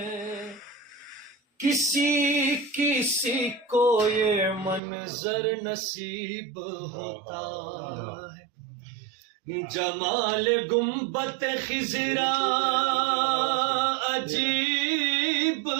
کسی کسی کو یہ منظر نصیب ہوتا ہے. جمال گنبد خضرا عجیب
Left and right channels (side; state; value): left; drops out; at 4.8 s